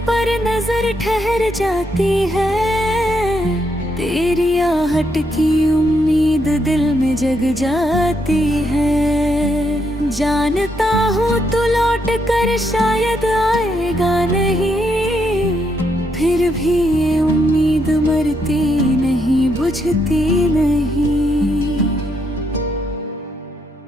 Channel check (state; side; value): normal; both; correlation 0.77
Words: पर नजर ठहर जाती है, तेरी आहट की उम्मीद दिल में जग जाती है। जानता हूँ तू लौट कर शायद आएगा नहीं, फिर भी ये उम्मीद मरती नहीं बुझती नहीं।